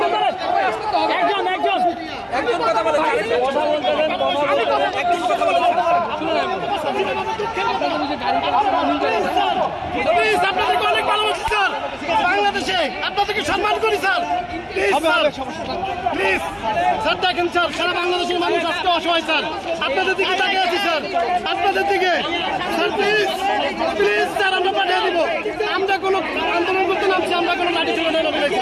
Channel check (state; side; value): identical; both; correlation 1.00